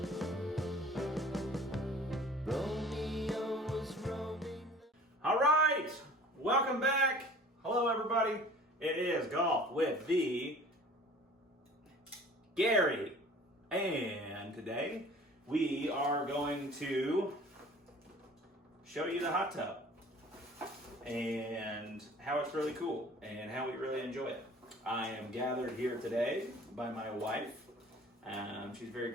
All right, welcome back. Hello, everybody. It is Golf with the Gary. And today we are going to show you the hot tub and how it's really cool and how we really enjoy it. I am gathered here today by my wife. She's very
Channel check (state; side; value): normal; both; correlation 0.47